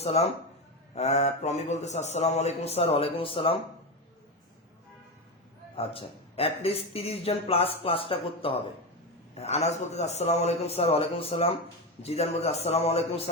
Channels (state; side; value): normal; both; correlation 0.16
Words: প্রমি বলতেছে আসসালামু আলাইকুম স্যার, ওয়ালাইকুম আসসালাম। আচ্ছা, অ্যাটলিস্ট 30 জন প্লাস ক্লাসটা করতে হবে। আনাস বলতেছে আসসালামু আলাইকুম স্যার, ওয়ালাইকুম আসসালাম। জিদান বলতেছে আসসালামু আলাইকুম